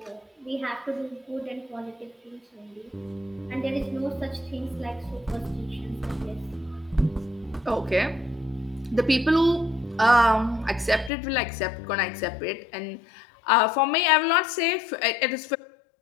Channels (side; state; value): right; drops out; at 11.1 s